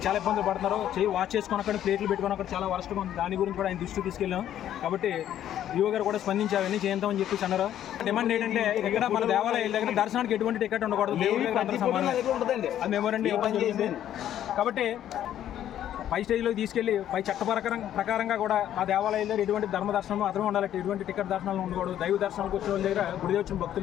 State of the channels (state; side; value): quieter; right; 11.2 dB